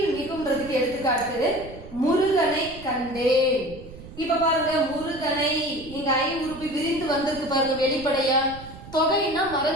மிகும்ன்றதுக்கு எடுத்துக்காட்டு முருகனை கண்டேன். இப்ப பாருங்க, முருகனை இங்க ஐ உருபு விரிந்து வந்திருக்கு பாருங்க வெளிப்படையா. தொகைன்னா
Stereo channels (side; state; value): right; noise; rumble, 16 dB below the sound